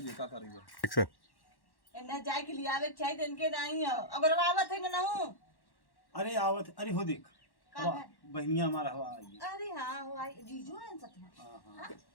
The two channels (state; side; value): late; right; 1.1 ms